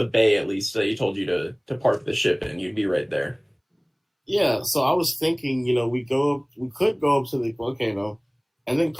bay, at least that you told you to park the ship in, you'd be right there. Yeah, so I was thinking, we could go up to the volcano and then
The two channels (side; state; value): both; identical; correlation 1.00